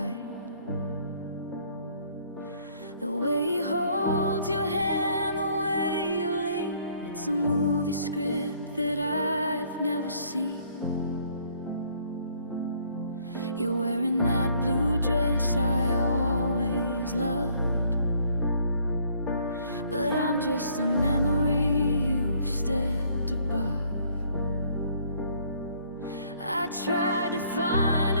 The way he holds your hand, the way you lean, it's a movie script that I've never seen. You're wearing that blue dress I always loved, but I'm just a memory you've stepped above. I tried to find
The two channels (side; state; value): both; inverted; correlation -0.63